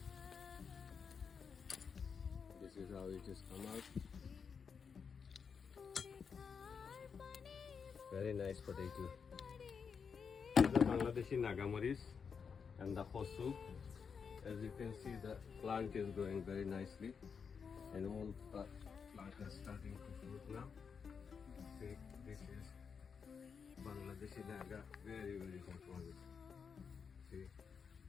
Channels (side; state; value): right; quieter; 6.2 dB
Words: This is how it is come out. Very nice potato. The Bangladeshi Nagamaris and the Hosu. As you can see, the plant is growing very nicely, and all the plant is starting to fruit now. See, this is Bangladeshi Naga, very hot one. See,